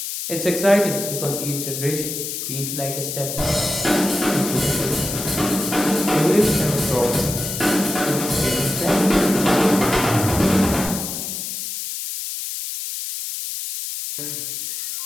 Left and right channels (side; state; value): left; noise; hiss, 5 dB below the sound